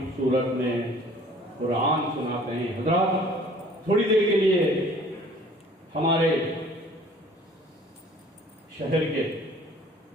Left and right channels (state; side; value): normal; both; correlation 0.52